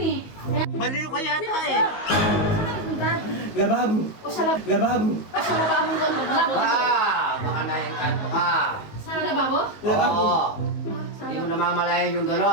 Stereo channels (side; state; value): right; late; 19 ms